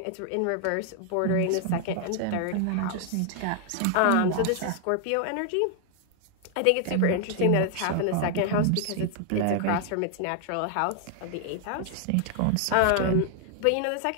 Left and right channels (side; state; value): both; different; correlation 0.00